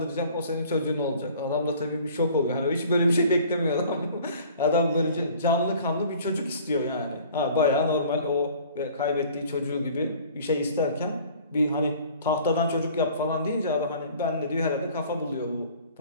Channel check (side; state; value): both; inverted; correlation -0.50